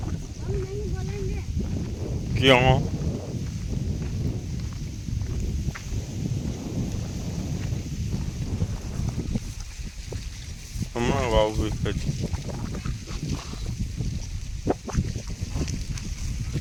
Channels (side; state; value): both; identical; correlation 1.00